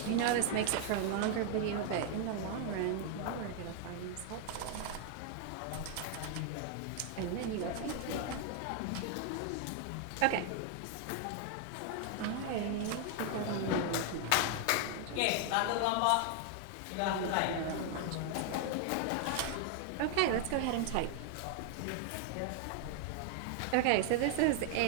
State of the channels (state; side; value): different; both; correlation 0.00